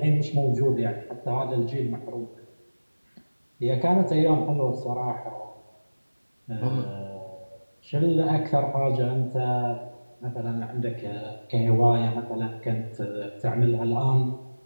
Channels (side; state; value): both; inverted; correlation -1.00